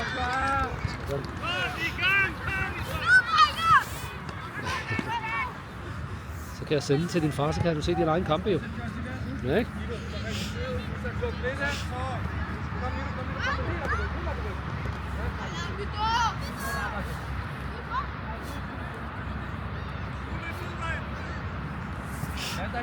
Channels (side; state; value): both; identical; correlation 1.00